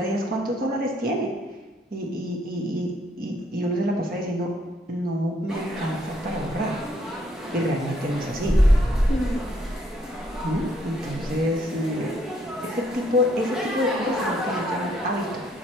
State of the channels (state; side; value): normal; both; correlation 0.68